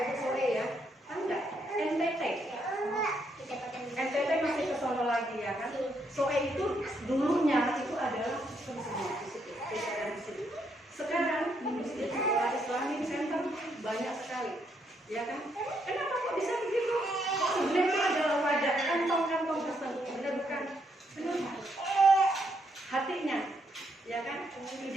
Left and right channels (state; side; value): normal; both; correlation 0.75